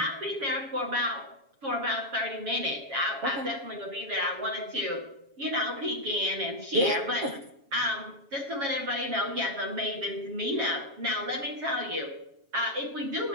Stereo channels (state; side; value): late; left; 7.3 ms